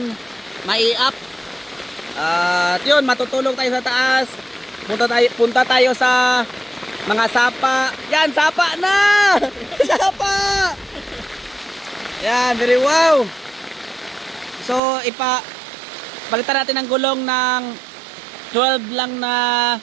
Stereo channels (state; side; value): drops out; left; at 14.8 s